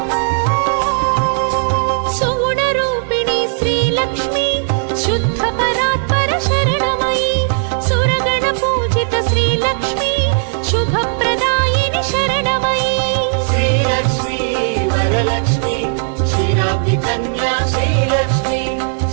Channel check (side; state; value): left; silent; digital silence